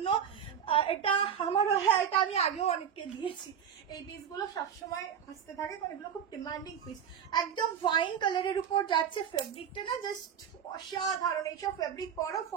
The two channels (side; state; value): left; quieter; 8.2 dB